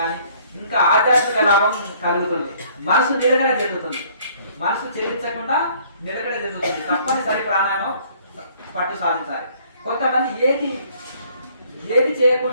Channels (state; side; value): inverted; both; correlation -0.60